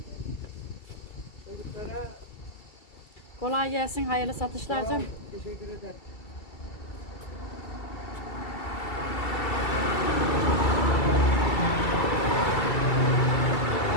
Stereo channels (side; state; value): right; late; 2.3 ms